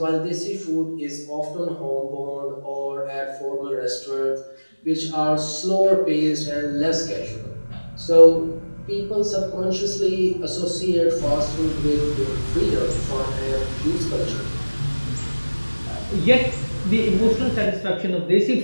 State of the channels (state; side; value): inverted; both; correlation -1.00